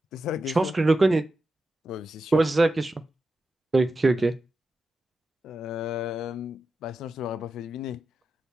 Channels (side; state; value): both; normal; correlation 0.90